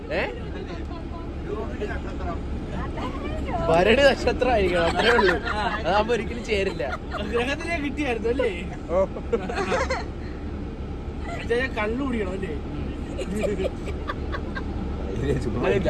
ഭരണി നക്ഷത്രം ആയിരിക്കണം, അത്രേ ഉള്ളൂ. അതാകുമ്പോ ഒരിക്കലും ചേരില്ല. ഗ്രഹത്തിലേ കിട്ടിയായിരുന്നു അല്ലേ? കള്ളു കുടിക്കണം അല്ലേ? അങ്ങനെയില്ല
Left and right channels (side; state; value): both; identical; correlation 1.00